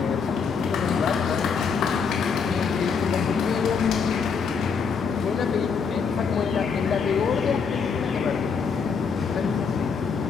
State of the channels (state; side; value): quieter; right; 5.8 dB